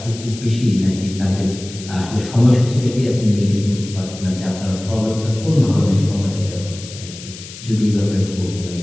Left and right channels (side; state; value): left; noise; hiss, 14 dB below the sound